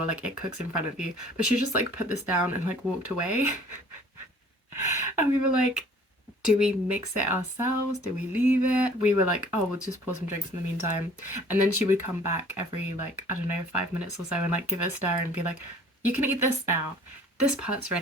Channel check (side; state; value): both; normal; correlation 0.52